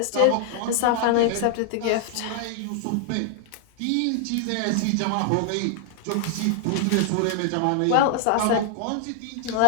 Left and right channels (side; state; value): both; different; correlation 0.00